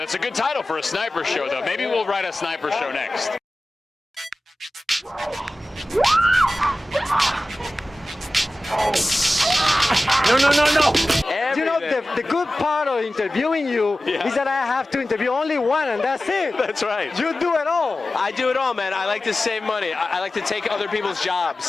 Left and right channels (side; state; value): both; normal; correlation 0.96